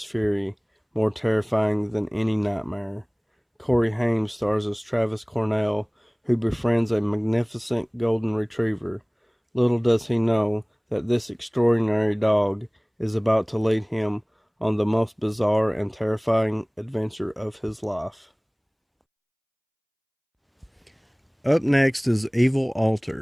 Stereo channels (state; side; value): identical; both; correlation 1.00